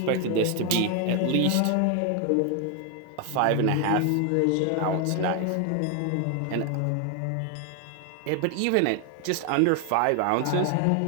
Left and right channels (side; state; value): both; different; correlation 0.01